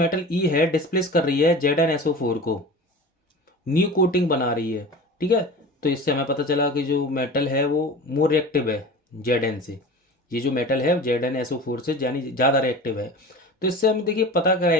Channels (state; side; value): normal; both; correlation 0.35